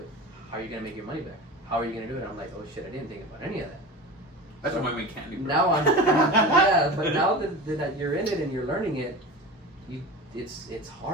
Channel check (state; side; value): normal; both; correlation 0.31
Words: How are you going to make your money back? How are you going to do it? I'm like, oh shit, I didn't think about any of that. That's why I make candy, bro. Now yeah, but now that you're in it and you're learning it, it's